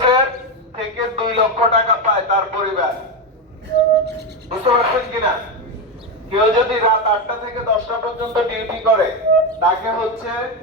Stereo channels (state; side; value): normal; both; correlation 0.11